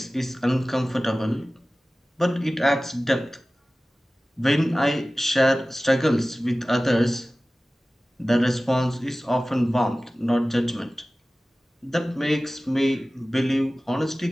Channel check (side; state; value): both; normal; correlation 0.97